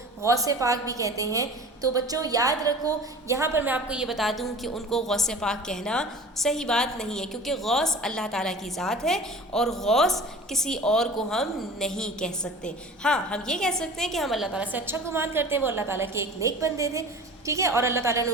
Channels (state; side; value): normal; both; correlation 0.39